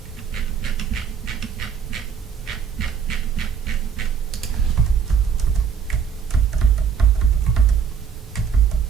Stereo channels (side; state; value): left; quieter; 6.8 dB